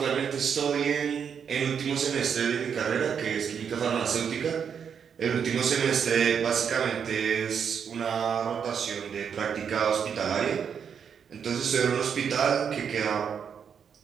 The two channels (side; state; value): left; quieter; 7.3 dB